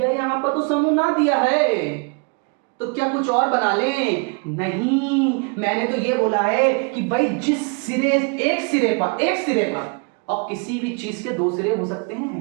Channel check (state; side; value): quieter; left; 35.2 dB